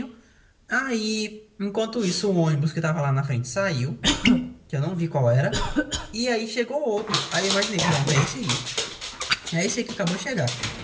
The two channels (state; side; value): identical; both; correlation 1.00